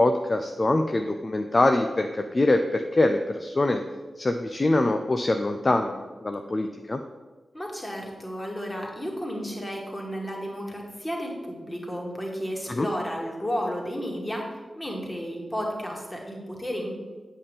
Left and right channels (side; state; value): both; normal; correlation 0.96